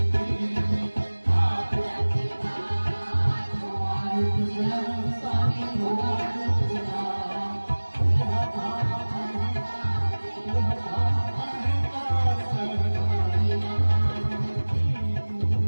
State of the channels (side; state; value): both; inverted; correlation -1.00